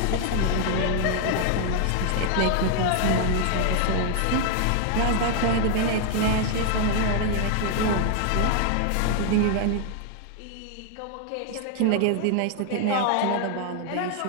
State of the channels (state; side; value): different; both; correlation 0.00